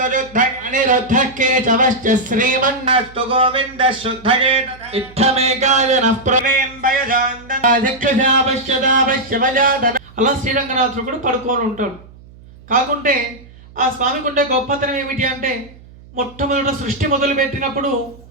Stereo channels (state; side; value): noise; right; hum, 22 dB below the sound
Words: శుద్ధ అనిరుద్ధ కేశవశ్చ శ్రీమన్నస్తు గోవింద శుద్ధజే ఇత్తమేకాయ నఃప్రవేం భయజాందన అధిక్షశాపశ్యదాపశ్యవజాదన అలా శ్రీరంగనాథుడు కూడా పడుకొని ఉంటాడు. కాకుంటే ఆ స్వామికి ఉండే గొప్పతనం ఏమిటి అంటే మొట్టమొదట సృష్టి మొదలుపెట్టినప్పుడు